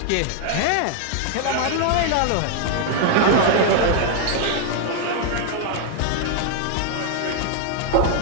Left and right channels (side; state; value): both; different; correlation 0.00